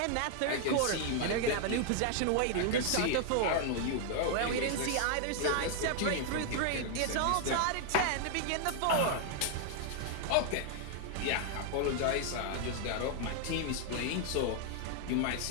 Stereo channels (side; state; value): both; different; correlation 0.00